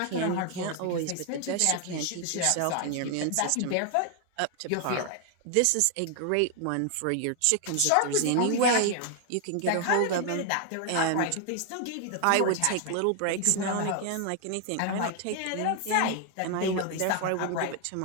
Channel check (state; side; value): different; both; correlation 0.00